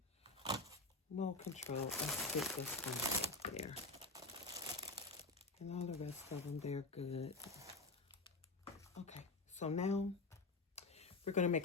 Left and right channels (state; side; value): quieter; right; 3.3 dB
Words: No control. Let's get this one right there. And all the rest of them, they're good. Okay, so now we're going to